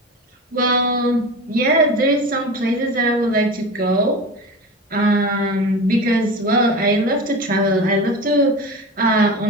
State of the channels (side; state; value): both; normal; correlation 0.29